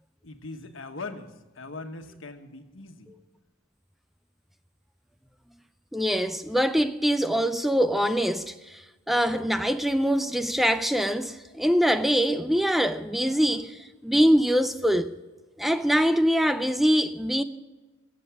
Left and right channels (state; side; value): normal; both; correlation 0.93